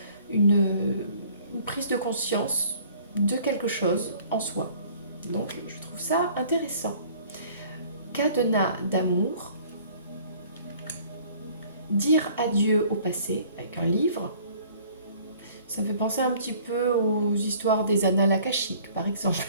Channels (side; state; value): both; inverted; correlation -0.54